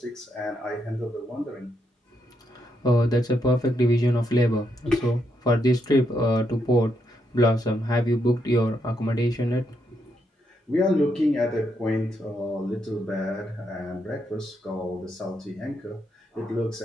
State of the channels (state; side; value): normal; both; correlation 0.79